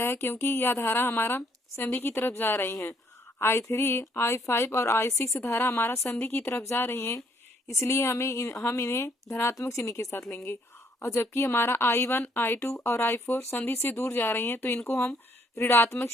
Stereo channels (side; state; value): both; normal; correlation 0.67